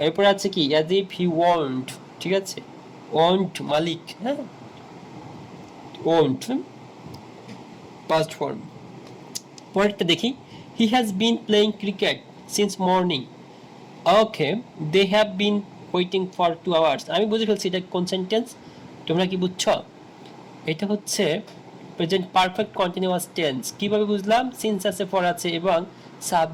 এরপর আছে কি, অ্যাজ ইফ হি ওয়ান্ট, ঠিক আছে। ওয়ান্ট মালিক, হ্যাঁ, ওয়ান্ট পাস্ট ফর্ম। পরেরটা দেখি, he has been playing cricket since morning. Okay, they have been waiting for 2 hours। আমি বুঝে ফেলছি এটা কোন সেন্টেন্স, তোমরা কি বুঝছো? এটা হচ্ছে প্রেজেন্ট পারফেক্ট কন্টিনিউয়াস টেন্স। কিভাবে বুঝলাম, সিন্স আছে, ফর আছে এবং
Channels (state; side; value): identical; both; correlation 1.00